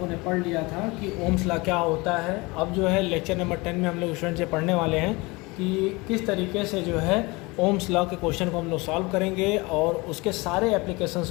ने पढ़ लिया था कि ओम्स लॉ क्या होता है। अब जो है लेक्चर नंबर 10 में हम लोग स्टूडेंट से पढ़ने वाले हैं कि किस तरीके से जो है ओम्स लॉ के क्वेश्चन को हम लोग सॉल्व करेंगे और उसके सारे एप्लीकेशंस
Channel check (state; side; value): quieter; right; 24.4 dB